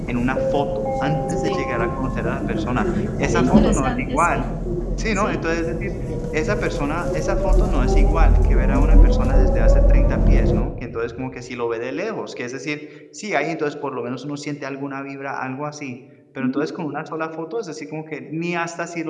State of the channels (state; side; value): identical; both; correlation 1.00